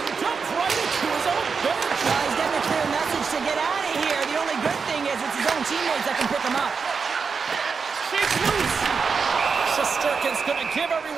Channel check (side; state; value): left; quieter; 5.4 dB